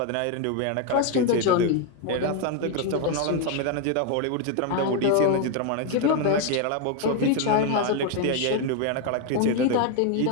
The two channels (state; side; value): different; both; correlation 0.01